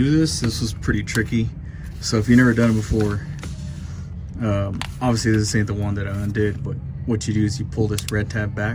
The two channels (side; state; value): both; identical; correlation 1.00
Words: this was pretty tricky. So if you've never done it before, obviously this ain't the one that I undid, but what you do is you pull this red tab